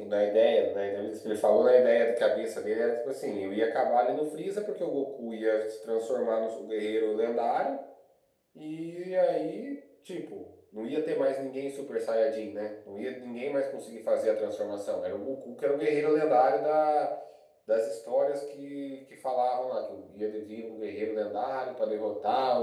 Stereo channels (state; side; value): identical; both; correlation 1.00